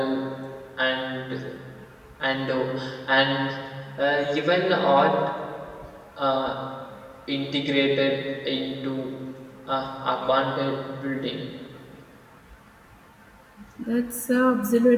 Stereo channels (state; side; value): identical; both; correlation 1.00